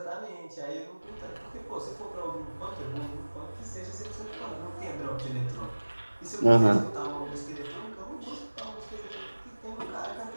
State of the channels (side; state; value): both; inverted; correlation -1.00